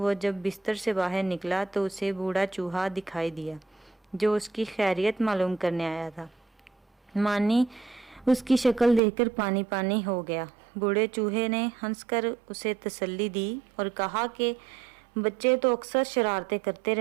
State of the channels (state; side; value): drops out; left; at 9.0 s